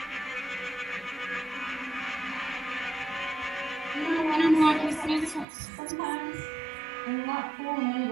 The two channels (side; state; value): left; drops out; at 5.5 s